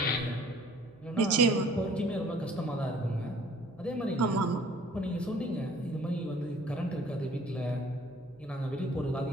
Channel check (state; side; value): noise; right; hum, 26 dB below the sound